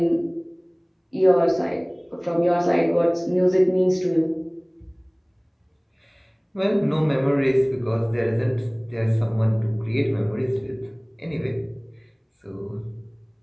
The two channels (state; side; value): identical; both; correlation 1.00